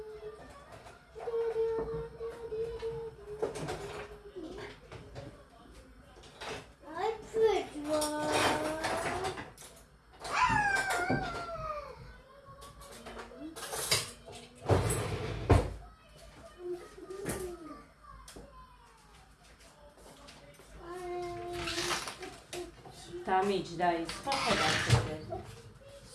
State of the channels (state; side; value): identical; both; correlation 1.00